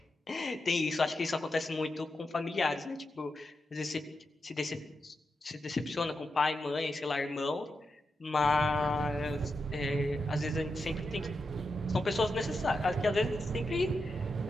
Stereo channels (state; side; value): normal; both; correlation 0.87